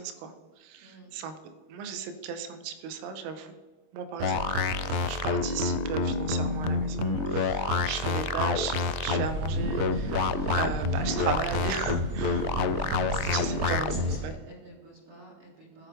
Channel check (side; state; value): left; late; 26 ms